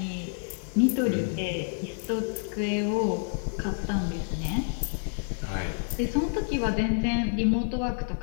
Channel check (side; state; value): right; silent; digital silence